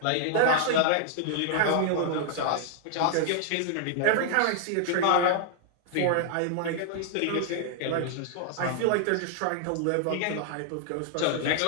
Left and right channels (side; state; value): both; different; correlation -0.01